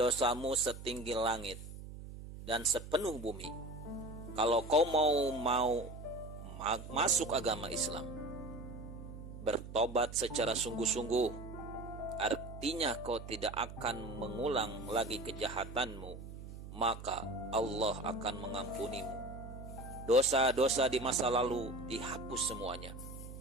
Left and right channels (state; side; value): noise; right; hum, 12 dB below the sound